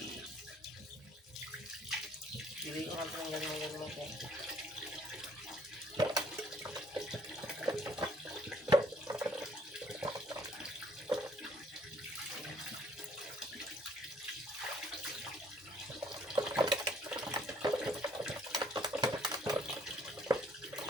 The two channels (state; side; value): normal; both; correlation 0.62